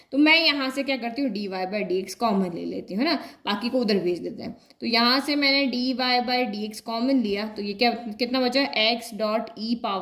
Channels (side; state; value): both; identical; correlation 1.00